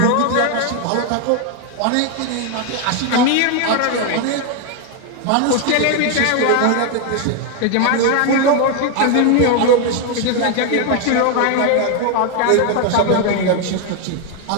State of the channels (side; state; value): both; different; correlation 0.01